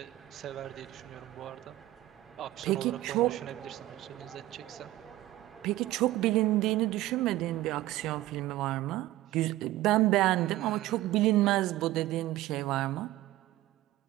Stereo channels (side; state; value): left; quieter; 16.0 dB